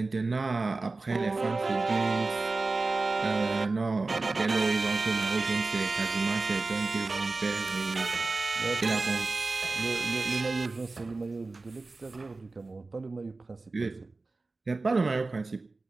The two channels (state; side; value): quieter; left; 3.5 dB